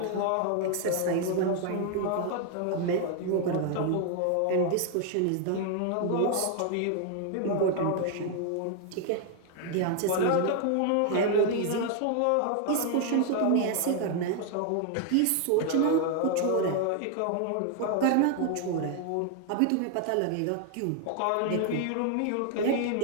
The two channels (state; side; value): different; both; correlation 0.00